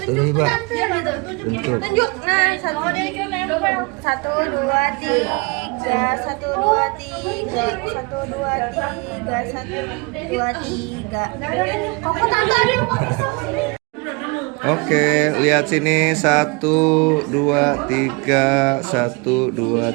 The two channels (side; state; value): left; quieter; 28.9 dB